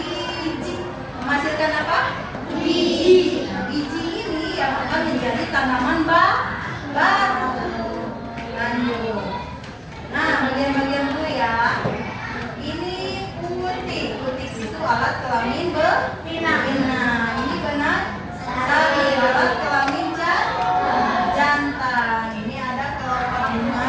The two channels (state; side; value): identical; both; correlation 1.00